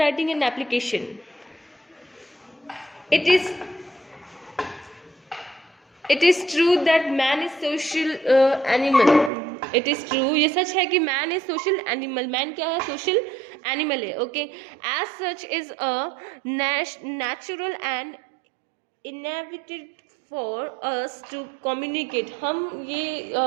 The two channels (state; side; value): drops out; left; at 9.3 s